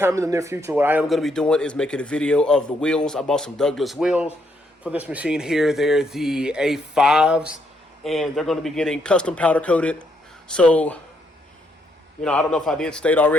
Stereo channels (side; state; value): both; normal; correlation 0.74